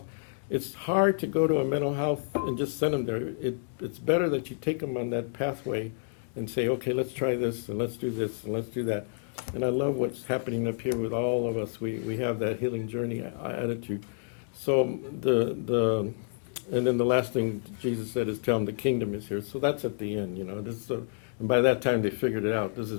It's hard to go to a mental health and just send them there. It's better that you take them on that pathway and say, okay, let's try this, and let's do this, and let's do that. And I love what's happening up here with all of us. We have that healing journey attitude. So and then the last thing Jesus said is tell them the kingdom is here. So that's at the end, and by that time they figured it out. This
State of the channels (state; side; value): silent; right; digital silence